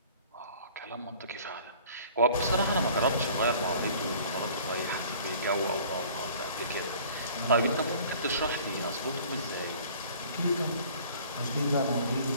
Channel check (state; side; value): inverted; both; correlation -0.50